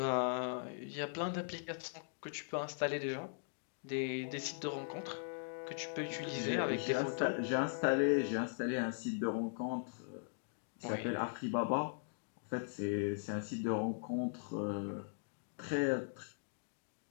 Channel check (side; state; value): right; silent; digital silence